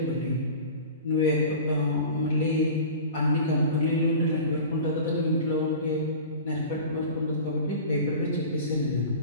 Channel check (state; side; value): inverted; both; correlation -0.37